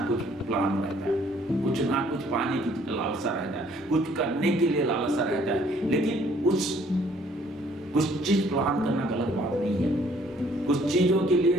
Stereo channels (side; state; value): both; normal; correlation 0.61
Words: कुछ प्लान रहता है, कुछ ना कुछ पाने की लालसा रहता है, कुछ करने के लिए लालसा रहता है। लेकिन कुछ चीज प्लान करना गलत बात नहीं है, कुछ चीजों के